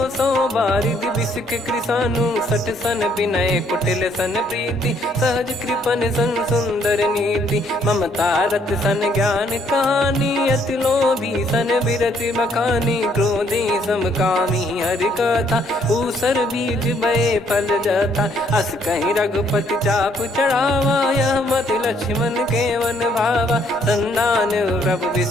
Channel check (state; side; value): normal; both; correlation 0.67